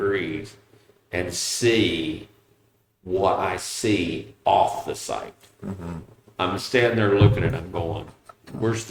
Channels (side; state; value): both; identical; correlation 1.00